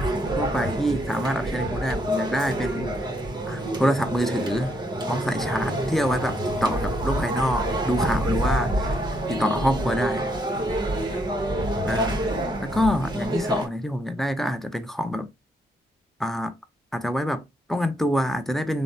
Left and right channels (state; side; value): normal; both; correlation 0.75